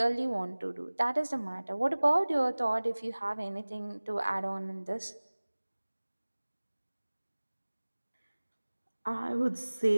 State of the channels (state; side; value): inverted; both; correlation -1.00